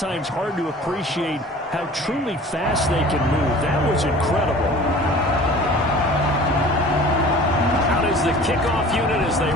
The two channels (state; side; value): normal; both; correlation 0.44